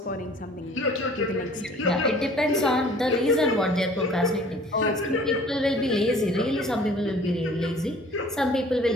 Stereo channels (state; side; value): normal; both; correlation 0.50